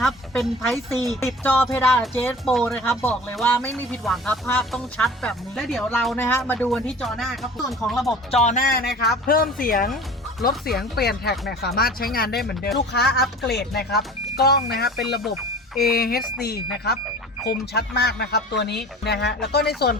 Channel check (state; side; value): normal; both; correlation 0.41